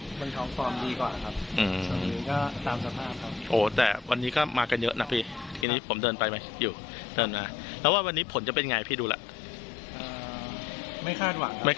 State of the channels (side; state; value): right; drops out; at 5.7 s